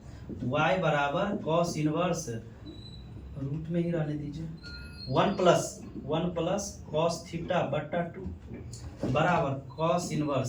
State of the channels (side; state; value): both; identical; correlation 1.00